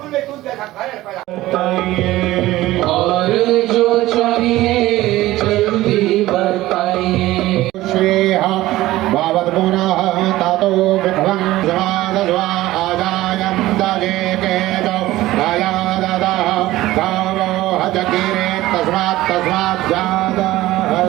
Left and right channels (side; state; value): left; quieter; 16.6 dB